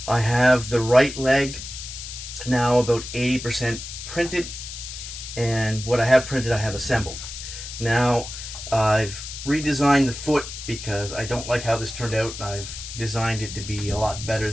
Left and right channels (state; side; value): noise; left; hiss, 10 dB below the sound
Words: I have the right leg now about 80% printed, and what I have printed I have assembled. Now I've redesigned the foot because I don't like how this turned out. I've designed it to be a lot better